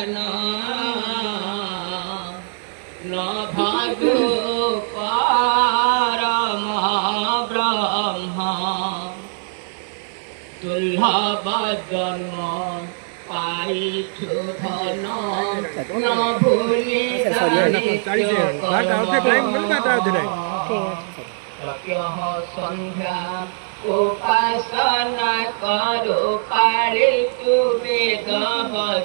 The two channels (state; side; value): silent; left; digital silence